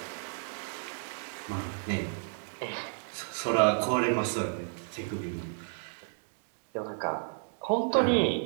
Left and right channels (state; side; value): silent; left; digital silence